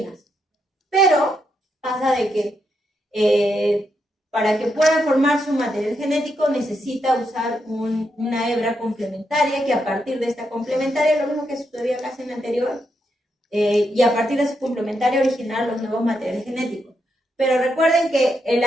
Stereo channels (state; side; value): normal; both; correlation 0.81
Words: Pero pasa de que para que pueda formar su material genético necesita usar una hebra complementaria, que a partir de esta complementaria, lo mismo que sucedía casi en la anterior, y a partir de su complementaria originar los nuevos materiales genéticos. Pero recuerden que el